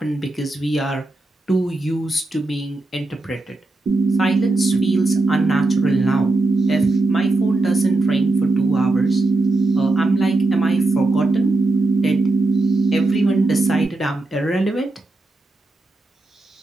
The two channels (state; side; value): quieter; left; 3.0 dB